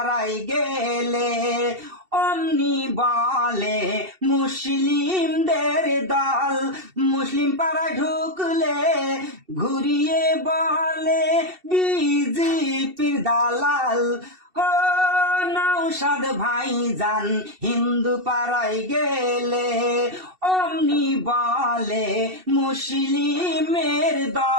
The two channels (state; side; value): late; left; 2.7 ms